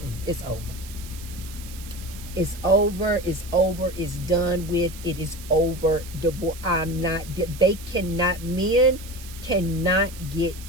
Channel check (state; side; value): noise; right; hiss, 16 dB below the sound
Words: it's over. It's over, it's over, it's done with, it is over. Divorce. Men cannot